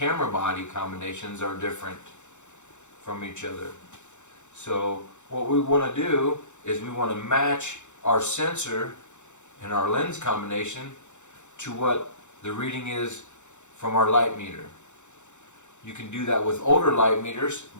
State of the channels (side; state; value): right; late; 0.84 ms